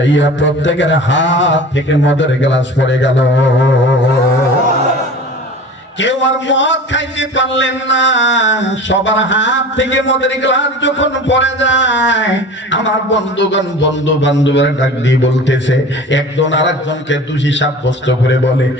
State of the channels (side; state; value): both; normal; correlation 0.38